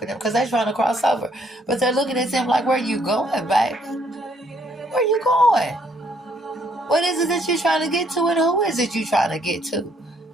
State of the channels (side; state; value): both; normal; correlation 0.68